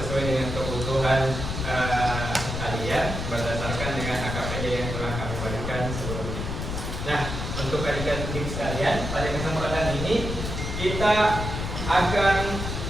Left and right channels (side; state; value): left; noise; rumble, 4 dB below the sound